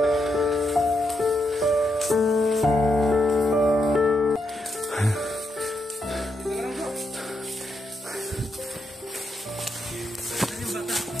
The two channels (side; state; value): both; normal; correlation 0.81